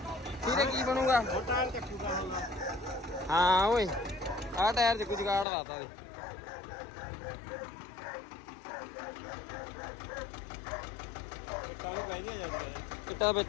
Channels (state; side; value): drops out; right; at 5.5 s